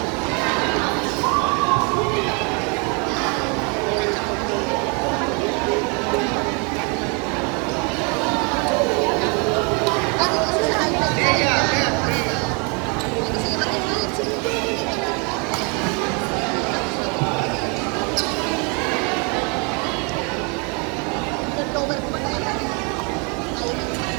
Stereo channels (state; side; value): quieter; left; 33.6 dB